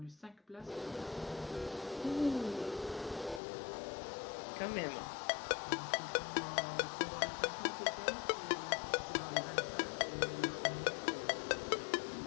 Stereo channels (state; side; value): drops out; right; at 3.4 s